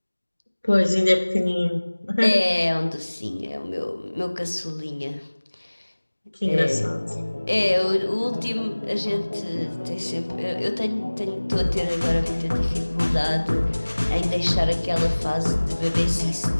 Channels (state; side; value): inverted; both; correlation -1.00